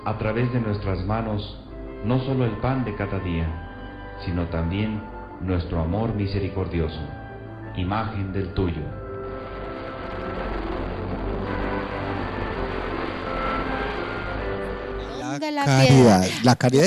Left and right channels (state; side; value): identical; both; correlation 1.00